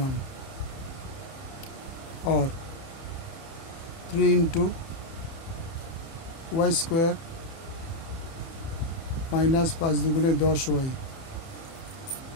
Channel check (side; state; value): right; late; 30 ms